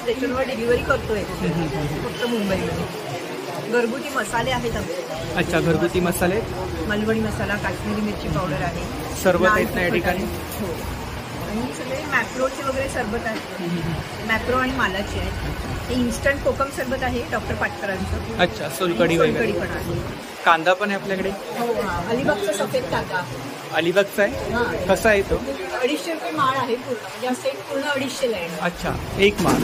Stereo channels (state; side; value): identical; both; correlation 1.00